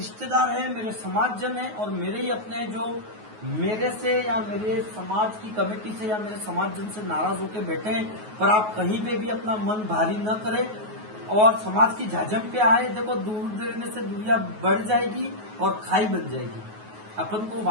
हैं, मेरे समाजजन हैं और मेरे ही अपने हैं जो मेरे से या मेरे समाज की कमेटी से या मेरे समाजजन से नाराज होकर बैठे हैं। पर आप कहीं पे भी अपना मन भारी न करें और समाज की झाझम पे आए। देखो, दूर देने से दुनिया बढ़ जाएगी और खाई बन जाएगी। अपन को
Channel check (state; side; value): late; left; 9.4 ms